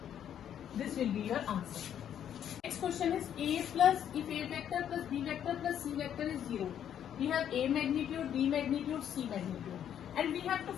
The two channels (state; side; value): quieter; right; 9.7 dB